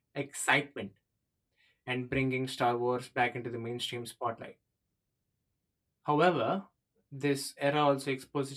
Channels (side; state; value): both; identical; correlation 1.00